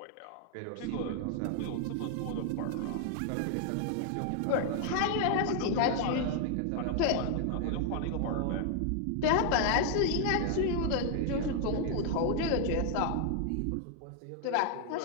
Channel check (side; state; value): both; different; correlation 0.00